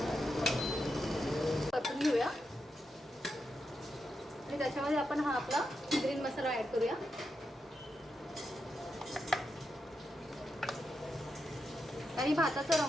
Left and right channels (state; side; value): normal; both; correlation 0.86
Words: परतून घेऊया आणि त्याच्यामध्ये आपण हा आपला ग्रीन मसाला ऍड करूया. आणि भाताचा